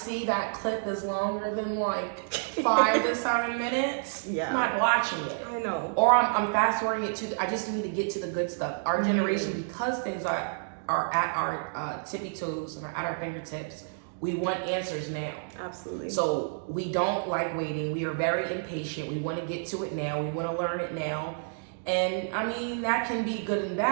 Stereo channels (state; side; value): silent; left; digital silence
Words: that clip is longer than like 5 to 7 minutes, I'm not watching it. I know. Or I'm fast forwarding it to, I just need to get to the good stuff. Our generation, because things are at our tippy toes and are at our fingertips, we want answers now. Absolutely. So we don't like waiting. We are very impatient. We want to get to it now. We want to learn it now. And I mean, that can be good and